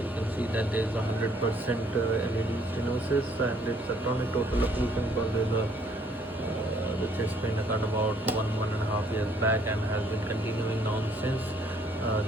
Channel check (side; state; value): both; normal; correlation 0.63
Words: can see that there is 100% LAD stenosis and it's a chronic total occlusion because there's the chest pain occurred about 1.5 years back and has been continuing on since.